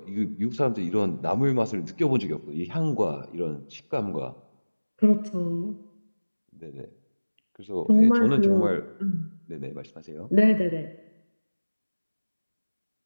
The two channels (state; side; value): inverted; both; correlation -1.00